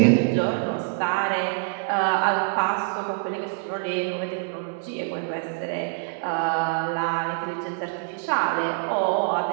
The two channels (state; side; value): silent; left; 62 dB below the other